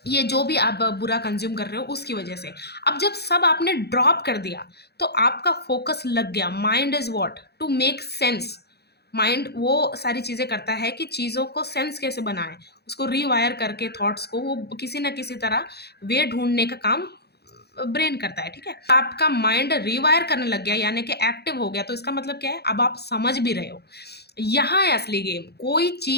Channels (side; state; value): right; late; 0.48 ms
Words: ये जो भी आप बुरा कंज्यूम कर रहे हो उसकी वजह से। अब जब सब आपने ड्रॉप कर दिया, तो आपका फोकस लग गया। Mind is what to make sense. Mind वो सारी चीज़ें करता है कि चीज़ों को सेंस कैसे बनाए, उसको रीवायर करके थॉट्स को वो किसी ना किसी तरह वे ढूंढने का काम ब्रेन करता है। ठीक है, आपका माइंड रिवायर करने लग गया, यानी कि एक्टिव हो गया। तो इसका मतलब क्या है? अब आप समझ भी रहे हो। यहाँ है असली गेम। कोई